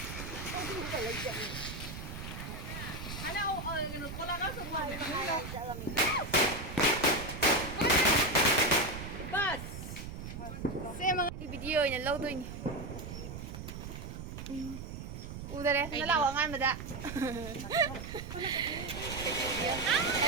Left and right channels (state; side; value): noise; right; rumble, 8 dB below the sound